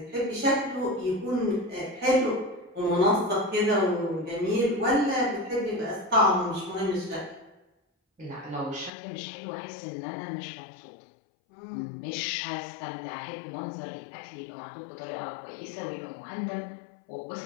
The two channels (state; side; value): drops out; right; at 8.9 s